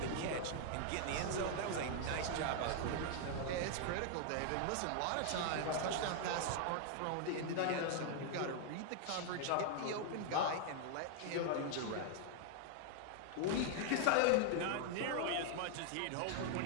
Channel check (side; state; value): both; different; correlation 0.00